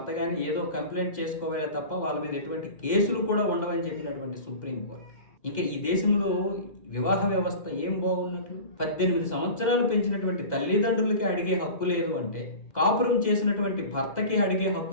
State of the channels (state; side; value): late; right; 2.1 ms